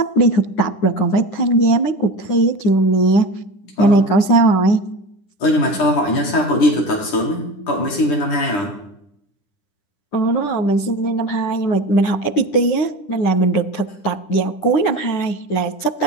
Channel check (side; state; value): right; late; 9.9 ms